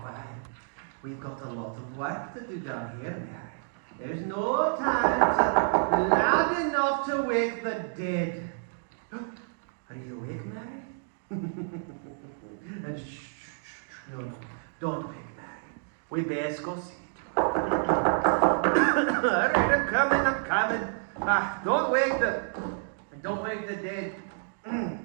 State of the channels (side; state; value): left; silent; digital silence